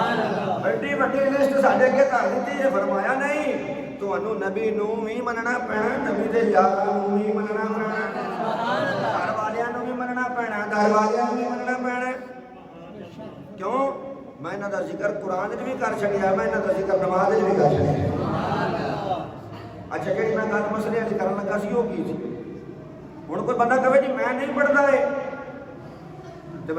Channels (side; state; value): both; identical; correlation 1.00